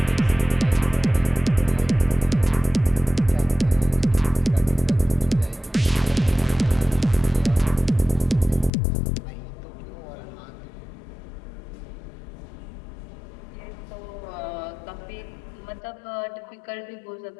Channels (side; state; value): right; drops out; at 8.7 s